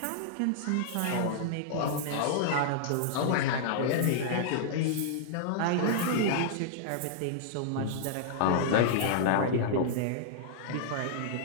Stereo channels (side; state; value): both; different; correlation -0.01